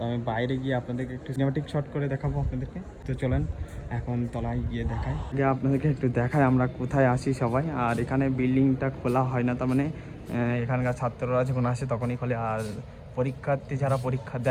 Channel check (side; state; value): both; identical; correlation 1.00